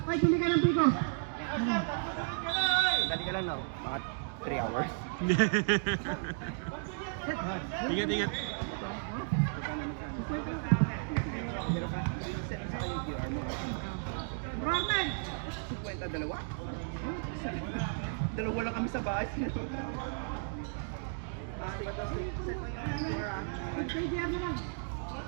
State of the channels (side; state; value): left; silent; digital silence